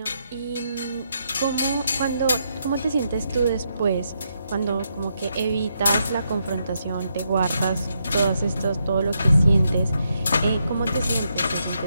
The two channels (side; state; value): both; inverted; correlation -0.80